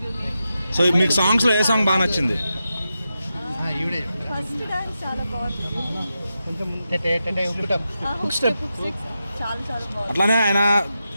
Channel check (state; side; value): inverted; both; correlation -0.89